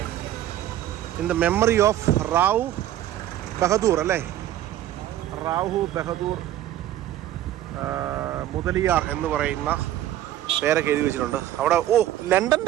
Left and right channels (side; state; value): left; quieter; 12.8 dB